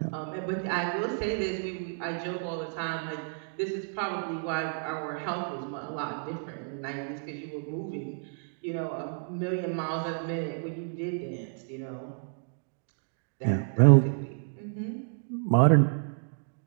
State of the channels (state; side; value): silent; left; digital silence